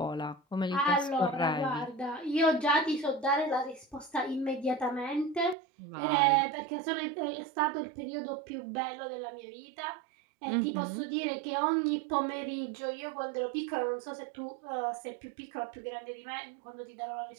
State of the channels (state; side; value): drops out; left; at 5.6 s